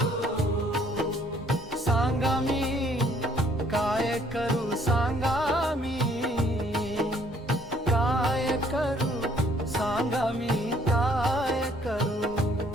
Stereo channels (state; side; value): normal; both; correlation 0.63